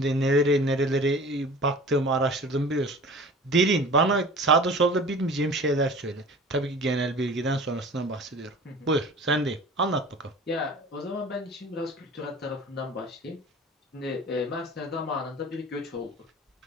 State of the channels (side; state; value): both; normal; correlation 0.42